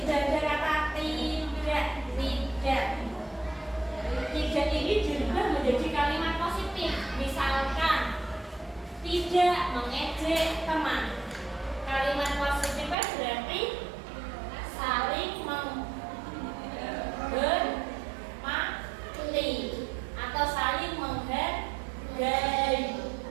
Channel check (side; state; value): left; drops out; at 13.0 s